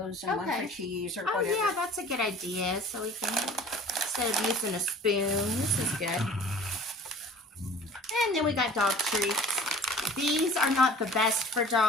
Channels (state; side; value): normal; both; correlation 0.47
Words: and one Okay. for cheese or Oh whatever. yeah, that's a good idea. So we can, instead of using a spoon, this is good. And then we got dog treats. These are not the best for